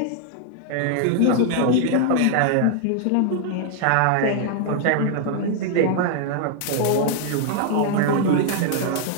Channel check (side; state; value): both; different; correlation 0.00